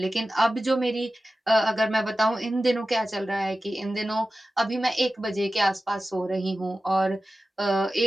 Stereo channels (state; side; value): normal; both; correlation 0.94